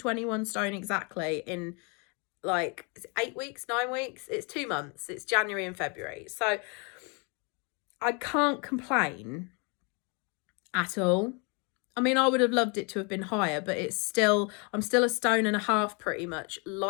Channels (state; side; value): quieter; right; 33.2 dB